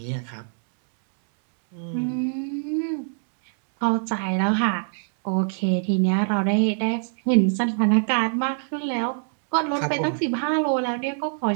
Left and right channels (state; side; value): silent; left; 63 dB below the other